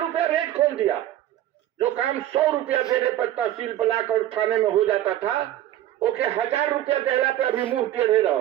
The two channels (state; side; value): quieter; left; 13.0 dB